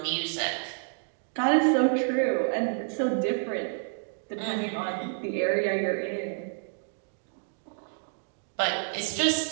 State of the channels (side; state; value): left; silent; 57 dB below the other